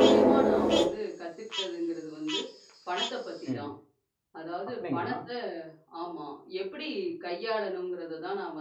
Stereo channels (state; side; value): identical; both; correlation 1.00